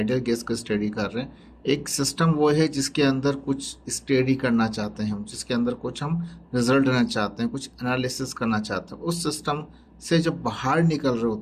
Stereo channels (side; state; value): both; identical; correlation 1.00